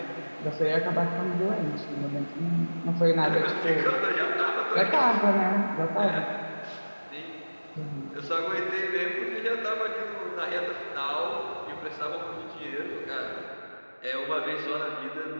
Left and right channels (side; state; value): both; inverted; correlation -1.00